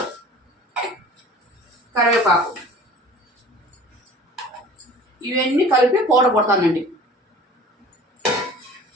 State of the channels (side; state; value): both; normal; correlation 0.44